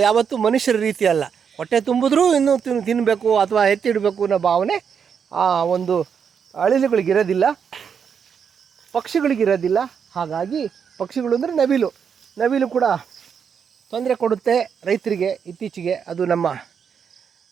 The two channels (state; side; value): quieter; left; 7.0 dB